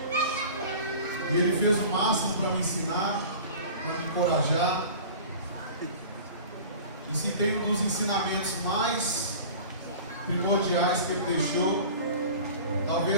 E ele fez o máximo para me ensinar, para me encorajar. E se tem um dos ensinamentos mais primordiais que ele deixou,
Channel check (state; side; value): inverted; both; correlation -0.40